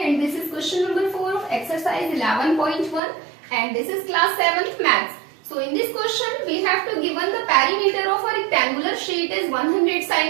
and this is question number 4 of exercise 11.1 and this is class 7th maths. So in this question we have to given the perimeter of a rectangular sheet is 100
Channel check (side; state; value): left; drops out; at 3.0 s